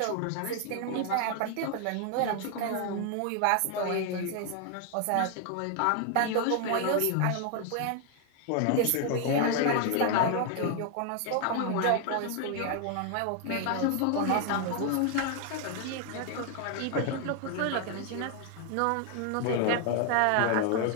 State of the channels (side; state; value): both; different; correlation 0.00